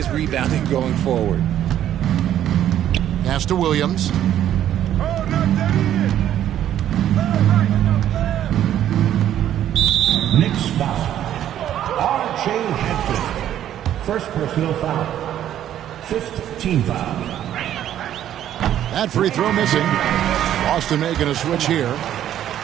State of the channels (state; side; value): quieter; left; 11.2 dB